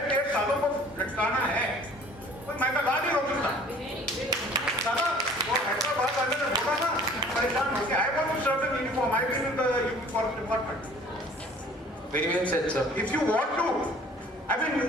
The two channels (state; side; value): normal; both; correlation 0.51